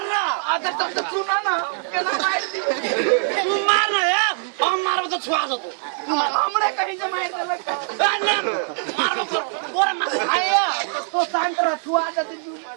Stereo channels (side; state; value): left; silent; 64 dB below the other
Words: अगर तब तक सुना ना के ना मार दी तू मारना यार हम मारबो तो छुआ दो हमरे कहीं से मार दे लगता ना मारबो करो बोरे मार आया तो शांत रह छुआ दे तू मार